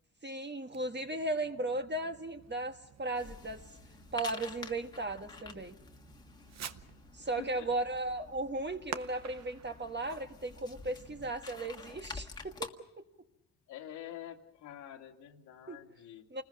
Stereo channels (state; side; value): normal; both; correlation 0.09